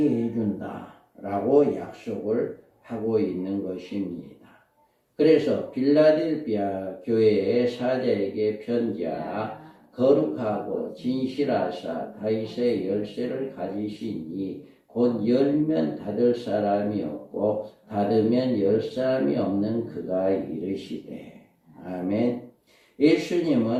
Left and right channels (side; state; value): both; identical; correlation 1.00